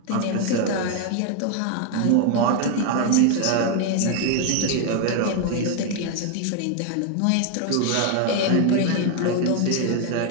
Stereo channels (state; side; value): different; both; correlation 0.00